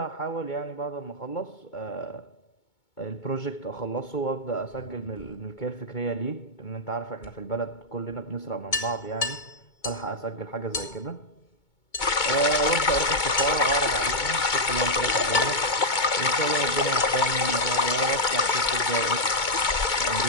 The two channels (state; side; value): late; right; 2.2 ms